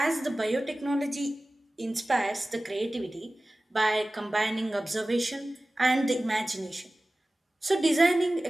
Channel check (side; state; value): both; normal; correlation 0.97